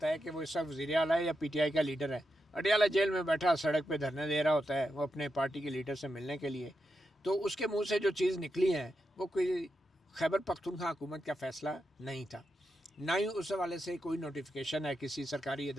ہے کہ وہ اس وقت وزیر اعلیٰ ہے یا پی ٹی آئی کا لیڈر ہے۔ اڈیالہ جیل میں بیٹھا سڑک پہ دھرنے دے رہا ہوتا ہے وہ اپنے پارٹی کے لیڈر سے ملنے کے لیے، تو اس کے منہ سے جو چیز نکلی ہے وہ کوئی خیبر پختونخوا حکومت کا فیصلہ نہیں تھا، نہ ہی اس حوالے سے کوئی نوٹیفیکیشن ہے کسی سرکاری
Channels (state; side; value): normal; both; correlation 0.86